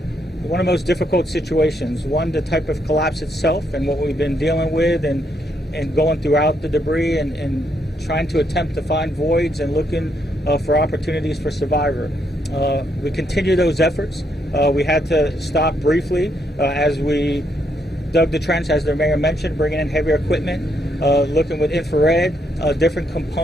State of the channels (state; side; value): normal; both; correlation 0.76